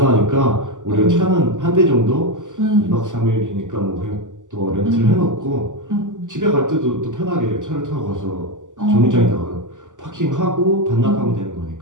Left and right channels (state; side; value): late; left; 0.87 ms